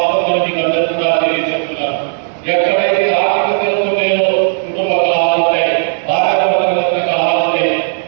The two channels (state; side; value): silent; left; digital silence